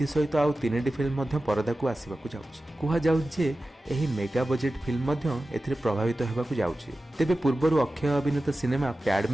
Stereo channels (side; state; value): both; normal; correlation 0.95